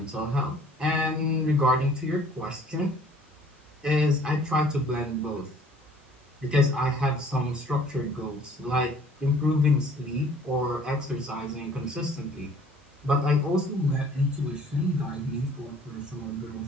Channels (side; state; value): both; normal; correlation 0.54